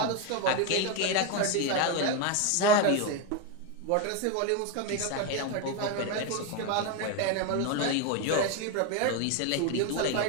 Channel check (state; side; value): different; both; correlation 0.02